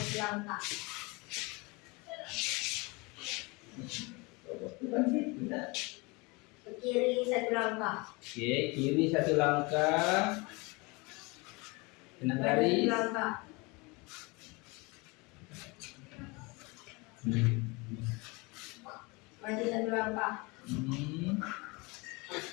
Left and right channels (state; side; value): quieter; right; 26.5 dB